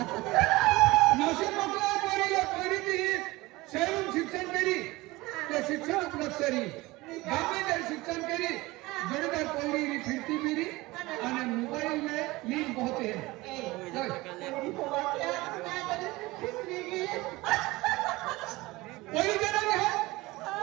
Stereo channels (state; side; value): quieter; left; 20.7 dB